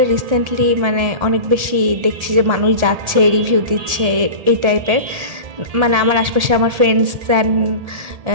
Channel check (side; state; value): left; late; 1.7 ms